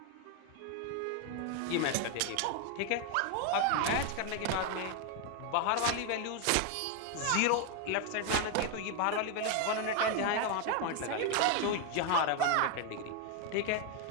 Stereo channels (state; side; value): different; both; correlation 0.01